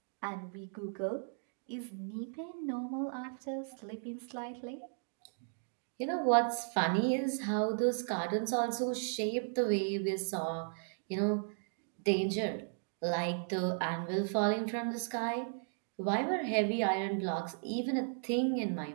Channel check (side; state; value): left; silent; digital silence